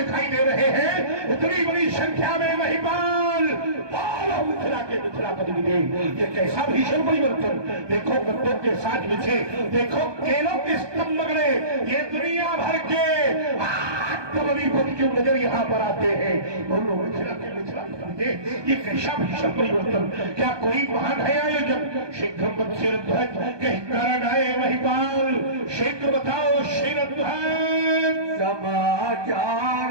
दे रहे हैं। इतनी बड़ी संख्या में महिमान मिथिला के मिथिलापति मिले। ये कैसा भीषण परिवर्तन! देखो गद्दों के साथ बिछे, देखो केलों के स्तंभ गड़े, ये दुनिया भर के पति क्यों नजर यहाँ पर आते हैं। बोलो मिथिला के मिथिलापति, ये कैसा भीषण परिवर्तन! क्या कोई महान है आयोजक? शीघ्र शिरध्वज कहीं कारण आए महिपाल, शीघ्र बताओ शिरध्वज। समाचार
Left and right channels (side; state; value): left; late; 1.2 ms